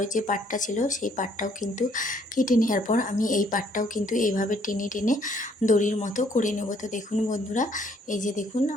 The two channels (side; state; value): both; normal; correlation 0.65